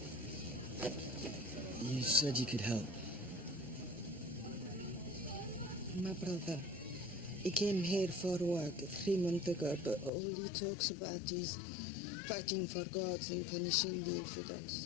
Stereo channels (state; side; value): drops out; right; at 10.1 s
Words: said you could help. My brother, he came here for work 3 months ago, but all he talks about is fighting for gods and punishing the